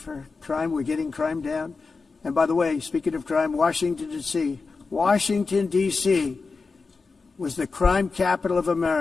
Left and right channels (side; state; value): right; quieter; 4.3 dB